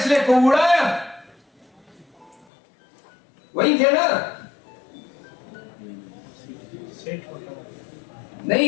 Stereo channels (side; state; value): right; drops out; at 2.5 s